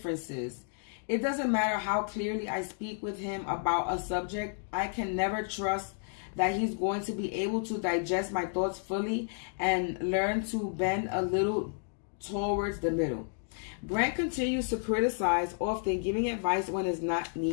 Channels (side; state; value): right; silent; digital silence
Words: It doesn't matter how clearly I speak with him about a subject, I can never trust that he's going to be able to digest my thoughts fully and learn to bend a little towards the middle. Grant continues to criticize, often giving advice when it's not